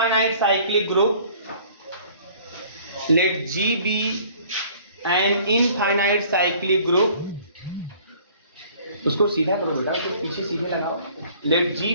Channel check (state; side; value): inverted; both; correlation -0.54